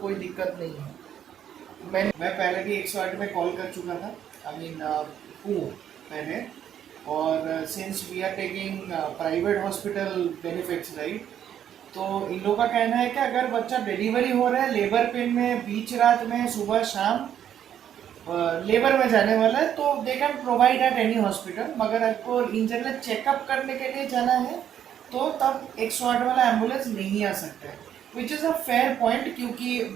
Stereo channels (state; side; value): quieter; left; 9.8 dB